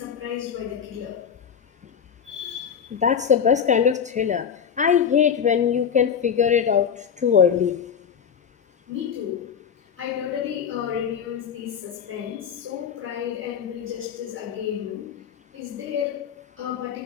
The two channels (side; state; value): right; quieter; 7.6 dB